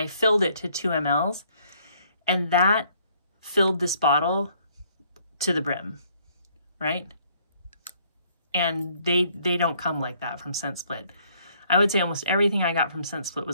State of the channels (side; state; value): both; inverted; correlation -0.65